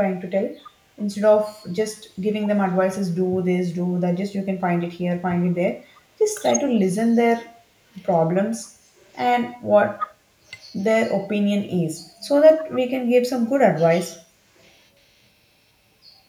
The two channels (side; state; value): both; identical; correlation 1.00